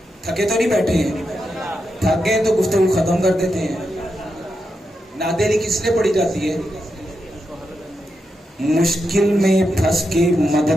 تھکے تو نہیں بیٹھے ہیں، تھک گئے تو گفتگو ختم کر دیتے ہیں۔ ناد علی کس لیے پڑھی جاتی ہے؟ مشکل میں پھنس کے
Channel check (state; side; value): normal; both; correlation 0.86